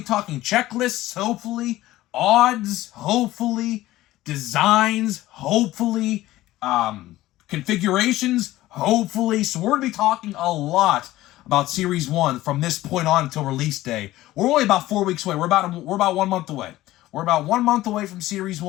talking checklists, hopefully, odds, hopefully, designs, hopefully, configurations, hopefully. So we're gonna be talking a lot about Series 1 from this point on until release day. We're only about 4 weeks away. We're about 1 month away. We're about 1 month away from Series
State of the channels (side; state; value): right; quieter; 16.2 dB